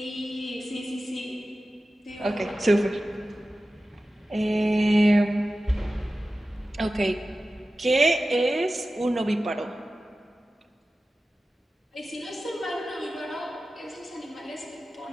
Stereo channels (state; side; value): normal; both; correlation 0.95